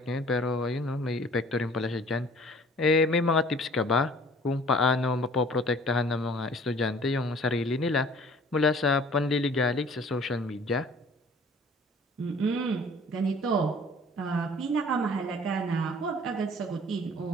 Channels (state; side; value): normal; both; correlation 0.51